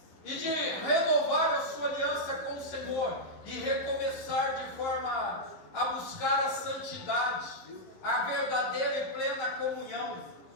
e de renovar a sua aliança com o Senhor. Senhor e recomeçar de forma a buscar a santidade, a verdadeira e plena comunhão,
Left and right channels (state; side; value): late; right; 11 ms